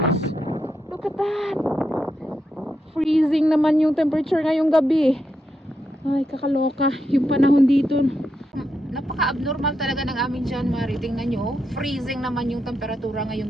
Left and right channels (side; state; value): both; normal; correlation 0.84